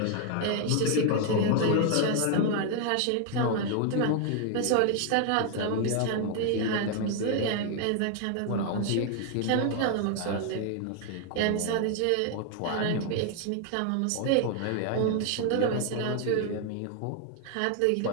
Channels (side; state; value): both; different; correlation 0.00